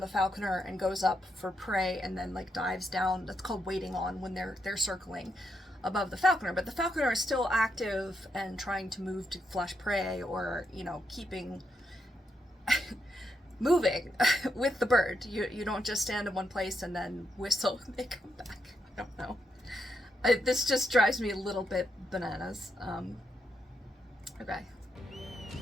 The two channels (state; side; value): normal; both; correlation 0.81